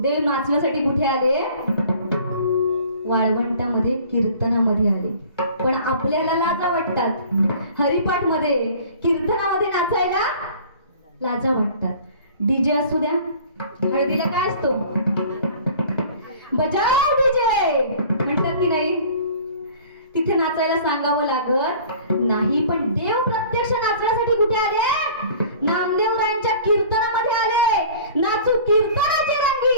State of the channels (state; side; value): inverted; both; correlation -0.47